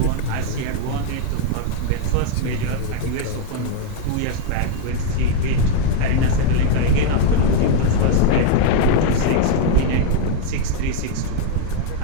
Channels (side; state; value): both; different; correlation 0.00